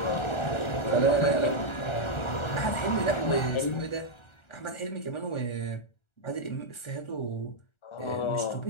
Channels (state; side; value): late; right; 1.3 ms